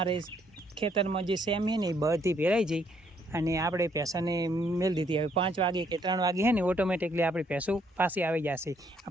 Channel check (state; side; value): normal; both; correlation 0.69